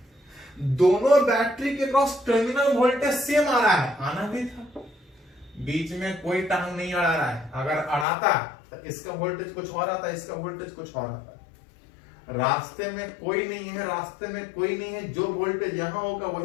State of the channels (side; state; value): right; drops out; at 8.1 s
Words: दोनों बैटरी के क्रॉस टर्मिनल वोल्टेज सेम आ रहा है, आना भी था, बीच में कोई टांग नहीं अड़ा रहा है। अगर अड़ाता तो इसका वोल्टेज कुछ और आता, इसका वोल्टेज कुछ और आता। रास्ते में कोई नहीं है, रास्ते में कोई नहीं है, जो वोल्टेज यहां होगा